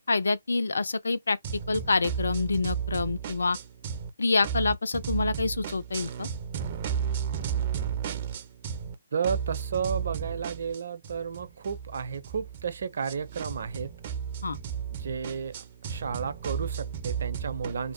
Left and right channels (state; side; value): inverted; both; correlation -0.70